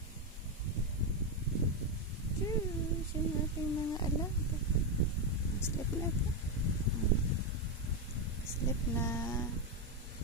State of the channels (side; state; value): both; normal; correlation 0.06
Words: Diyos. Yung ating mga alaga. Sleep na ito. Sleep na.